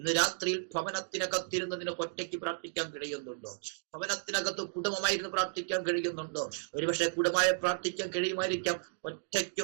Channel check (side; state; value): left; silent; digital silence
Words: രാത്രിയിൽ ഭവനത്തിനകത്തിരുന്നതിന് ഒറ്റയ്ക്ക് പ്രാർത്ഥിക്കാൻ കഴിയുന്നുണ്ടോ? ഭവനത്തിനകത്ത് കുടുംബമായിരുന്നു പ്രാർത്ഥിക്കാൻ കഴിയുന്നുണ്ടോ? ഒരുപക്ഷെ കുടുംബമായി പ്രാർത്ഥിക്കാൻ കഴിയുമായിരിക്കാം. ഒറ്റയ്ക്ക്